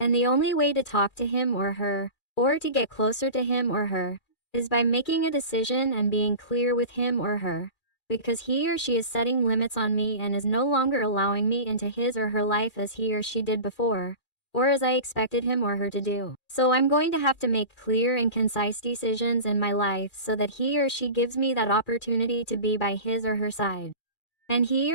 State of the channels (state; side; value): late; right; 2.4 ms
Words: the only way to talk to him or her, or to get closer to him or her, is by making a decision and being clear with him or her, because he or she is setting limits on me and is no longer allowing me into his or her life as he or she did before, or as I expected him or her to do. So I'm going to have to make clear and concise decisions in my life so that he or she gives me that opportunity to be by his or her side. And he